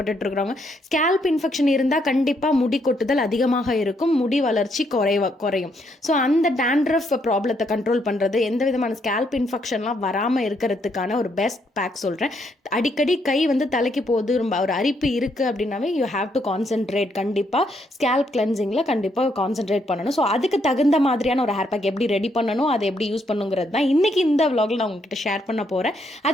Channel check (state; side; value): normal; both; correlation 0.74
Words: இருக்கிறவங்க, ஸ்கேல்ப் இன்ஃபெக்ஷன் இருந்தா கண்டிப்பா முடி கொட்டுதல் அதிகமாக இருக்கும், முடி வளர்ச்சி குறையும். ஸோ அந்த டேண்ட்ரஃப் ப்ராப்ளத்தை கண்ட்ரோல் பண்றது, எந்த விதமான ஸ்கேல்ப் இன்ஃபெக்ஷன்லாம் வராமல் இருக்கிறதுக்கான ஒரு பெஸ்ட் பேக் சொல்கிறேன். அடிக்கடி கை தலைக்கு போகுது, ரொம்ப ஒரு அரிப்பு இருக்குது அப்படின்னாவே யூ ஹாவ் டு கான்சென்ட்ரேட். கண்டிப்பாக ஸ்கேல்ப் கிளென்சிங்கில் கண்டிப்பாக கான்சென்ட்ரேட் பண்ணணும். ஸோ அதுக்கு தகுந்த மாதிரியான ஒரு ஹேர் பேக் எப்படி ரெடி பண்ணணும், அதை எப்படி யூஸ் பண்ணுங்கிறது தான் இன்றைக்கி இந்த விலாகில் நான் உங்ககிட்ட ஷேர் பண்ண போகிறேன்.